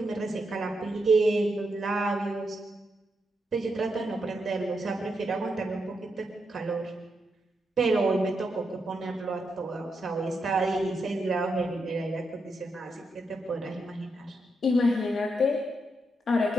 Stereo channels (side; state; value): both; normal; correlation 0.83